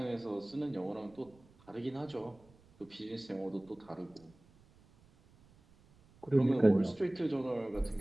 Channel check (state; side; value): noise; right; rumble, 28 dB below the sound